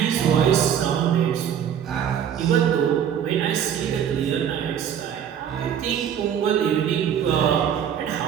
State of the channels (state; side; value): quieter; left; 8.9 dB